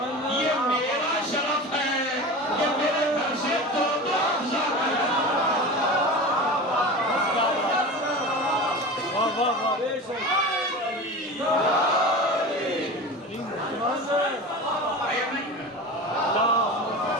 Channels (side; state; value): both; normal; correlation 0.31